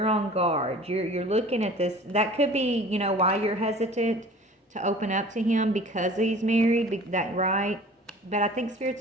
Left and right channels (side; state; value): both; normal; correlation 0.45